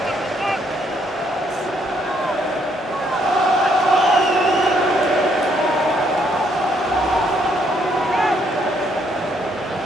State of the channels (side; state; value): both; normal; correlation 0.71